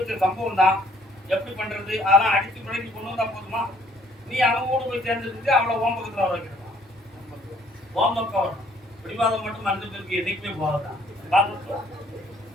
சம்பவம் தான். எப்படி பண்றது? அதெல்லாம் அடித்து பிழைக்கு கொண்டு வந்தா போதுமா? நீ அவங்களோட போய் சேர்ந்துட்டு அவளை ஓம் பக்கத்துல வைக்கிறதா? ஓம் பக்கம் வரணும். பிடிவாதம் மட்டும் மனசுக்கு என்னைக்குமே போகலாம்.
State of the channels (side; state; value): both; normal; correlation 0.62